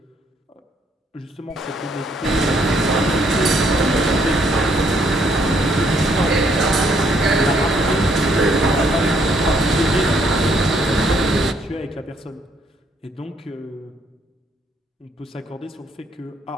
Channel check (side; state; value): both; normal; correlation 0.69